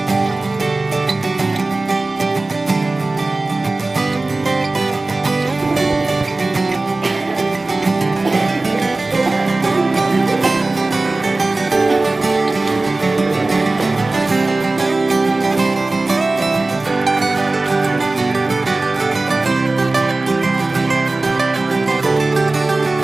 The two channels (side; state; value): left; quieter; 3.1 dB